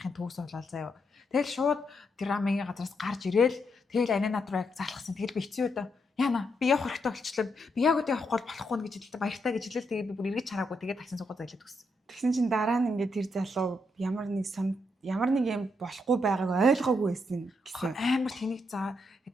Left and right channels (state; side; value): normal; both; correlation 0.79